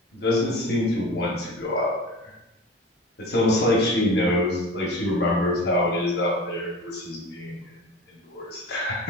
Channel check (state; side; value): normal; both; correlation 0.36